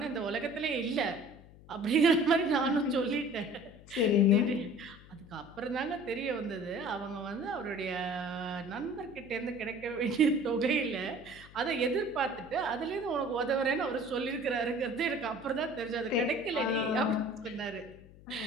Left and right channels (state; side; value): noise; left; hum, 21 dB below the sound